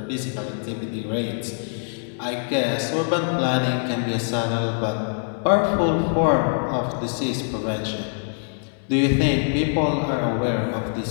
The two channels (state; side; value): silent; right; 63 dB below the other